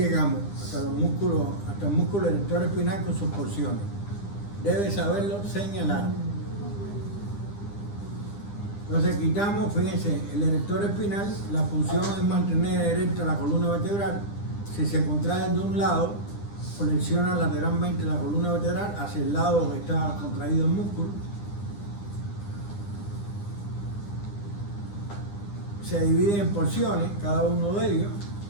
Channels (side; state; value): right; late; 9.9 ms